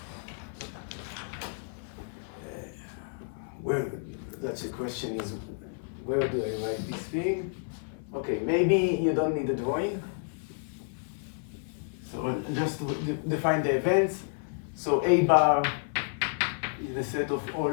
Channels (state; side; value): silent; right; 57 dB below the other